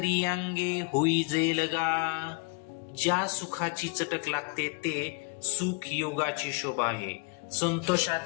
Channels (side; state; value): right; quieter; 31.7 dB